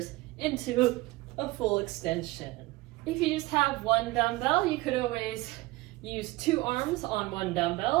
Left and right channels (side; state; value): left; quieter; 20.3 dB